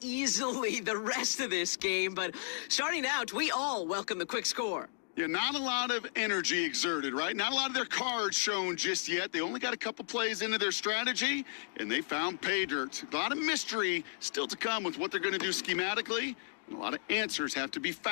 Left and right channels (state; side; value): silent; right; digital silence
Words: easily the rest of this game. But starting out, we all welcome the quick score. Yeah, not a lot of energy exerted, right? Not a lot of their cards shown just yet. They only got a couple plays into their strategy, and they found pay dirt. A lot of mystery still to come with what they're going to do schematically, and a lot of answers have to be